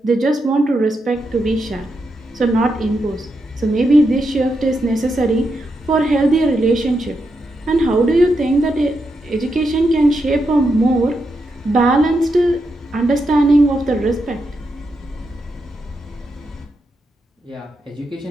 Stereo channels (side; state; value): both; normal; correlation 0.84